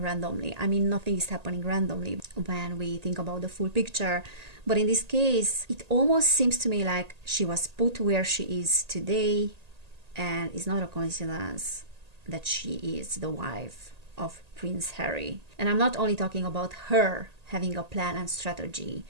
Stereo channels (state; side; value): late; left; 1.8 ms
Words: randomly. I mean, nothing is happening randomly when we think about the full picture. But in this case, it almost seems to me like she was put where she is today, and it's not a coincidence that she is the wife of Prince Harry. And I'm not only talking about her having a plan and strategy